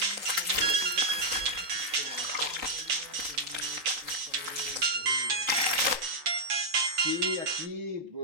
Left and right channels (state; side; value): late; left; 3.9 ms